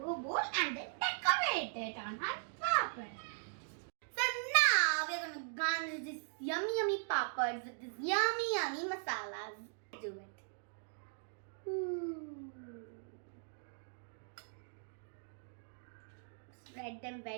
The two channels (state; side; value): silent; left; digital silence